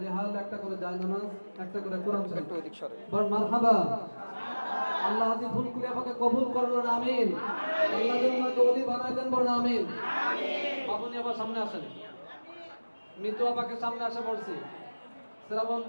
রেহাল, একটা করে জায়নামাজ, একটা করে কোরআন শরীফ। বল মারহাবা। আল্লাহ আজি ভুল করে আমাকে কবুল করবেন, আমিন। আল্লাহ যেন আমাকে ওলি বানায় দেন, বলেন আমিন। বাবুনি আবার সামনে আসেন, মিতু আপাকে সামনে আসে বলছি,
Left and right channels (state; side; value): inverted; both; correlation -1.00